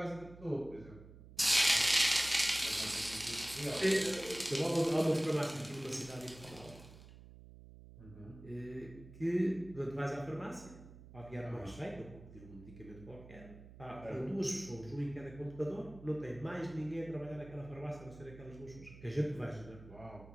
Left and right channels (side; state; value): right; noise; hum, 18 dB below the sound